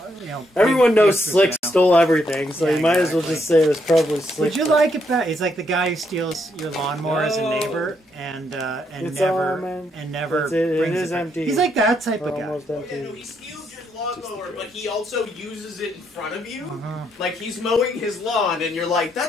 Everyone big knows pictures, Slick stole everything, so Yeah, you might as well exactly. just say it was probably Slick. Would you like it back? He's like the guy who steals your lawnmower as a neighbor and It's never all, man. and never That's it. It brings is back. empty. He's like that type We're of guy. almost Oh, empty. yeah, no, he steals your lawnmower, but he also uses it in front of you. Uh-huh. Like he's mowing his lawn, and you're like,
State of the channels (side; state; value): both; normal; correlation 0.76